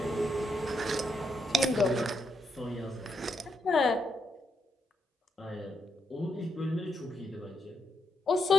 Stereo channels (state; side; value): normal; both; correlation 0.80